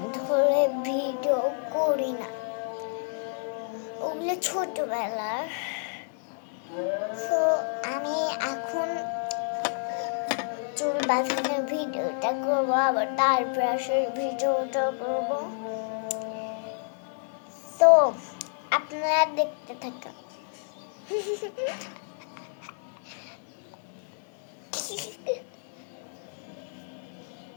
ধরে video করি না, ওগুলো ছোটবেলার। তো আমি এখন চুল বাঁধানোর ভিডিওটা করবো, আবার তার ব্রাশের ভিডিওটা করবো। তো আপনারা দেখতে থাকুন।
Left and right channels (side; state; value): right; silent; digital silence